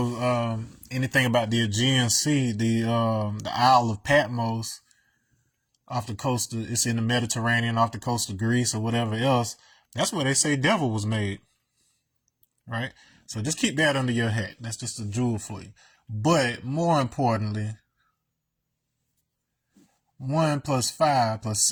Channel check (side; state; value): both; identical; correlation 1.00